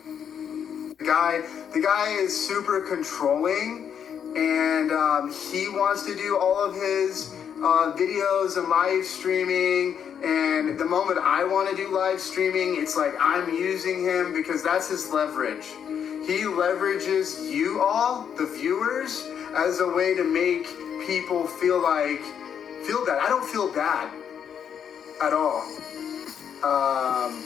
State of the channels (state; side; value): quieter; right; 8.1 dB